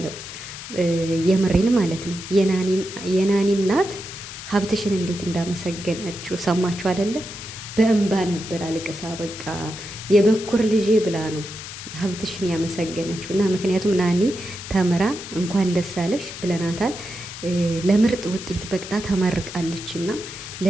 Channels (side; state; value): left; noise; hiss, 11 dB below the sound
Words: የምሬን ማለት ነው። የናኒ እናት ሀብትሽን እንዴት እንዳመሰገነችው ሰማችሁ አይደለ? በእንባ ነበር አልቅሳ በቃ የበኩር ልጄ ብላ ነው ሀብትሽን ያመሰገነችው። እና ምክንያቱም ናኒ ተምራ እንኳን ደስ አለሽ ብለናታል። ለምርጥ ውጤት በቅጣ ተመርቃለች። እና